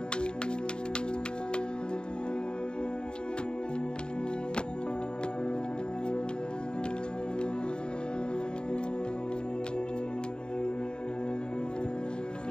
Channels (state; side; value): late; right; 0.049 ms